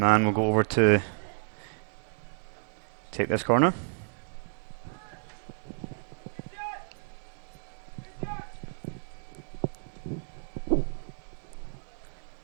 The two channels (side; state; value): left; silent; digital silence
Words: will go over to take this corner.